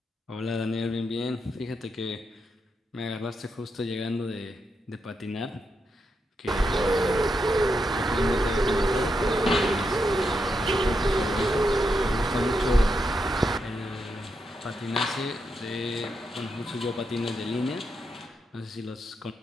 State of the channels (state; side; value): normal; both; correlation 0.83